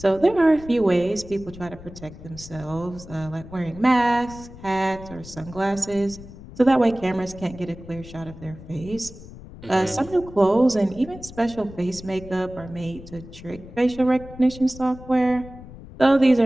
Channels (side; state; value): left; noise; rumble, 16 dB below the sound